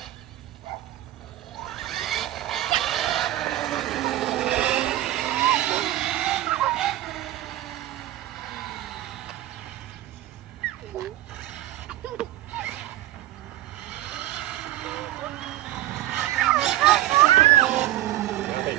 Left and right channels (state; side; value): quieter; left; 14.6 dB